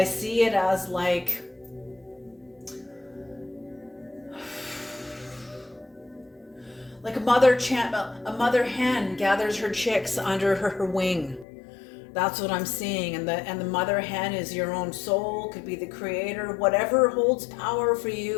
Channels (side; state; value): right; drops out; at 11.5 s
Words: see it as like a mother hen gathers her chicks under her wing. That's what I'm seeing. And the mother hen is your own soul, could be the creator. Whatever holds power for